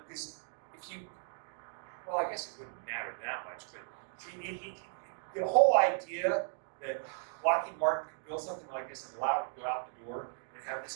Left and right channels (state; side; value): silent; left; 54 dB below the other